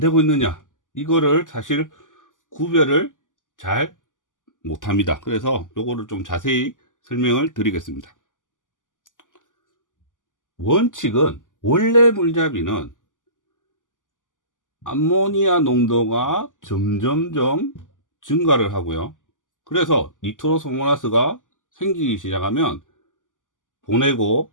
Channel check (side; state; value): right; late; 0.88 ms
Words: 있느냐, 이거를 사실 구별을 잘 못합니다. 그래서 요거를 좀 자세히 설명을 드리겠습니다. 원칙은, 원래 물잡이는 암모니아 농도가 점점점 증가를 하고요. 그래서 니트로소모나스가 생기기 시작하면